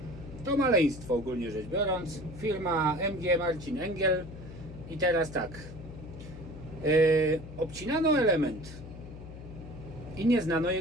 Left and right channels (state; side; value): noise; left; hum, 13 dB below the sound